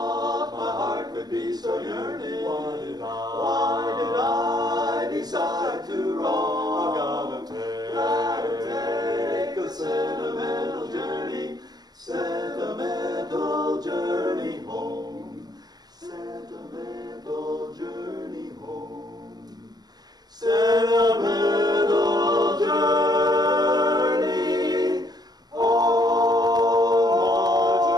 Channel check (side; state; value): left; late; 0.19 ms